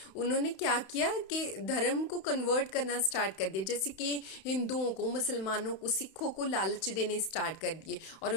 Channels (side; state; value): right; late; 31 ms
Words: उन्होंने क्या किया कि धर्म को कन्वर्ट करना स्टार्ट कर दिया, जैसे कि हिंदुओं को, मुसलमानों को, सिखों को लालच देने स्टार्ट कर दिए और